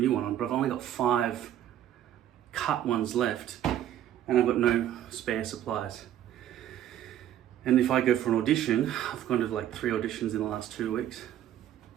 one on, but I've only got 5 cut ones left and I've got no spare supplies. And if I go for an audition, I've gone to like 3 auditions in the last 2 weeks.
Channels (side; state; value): left; quieter; 11.5 dB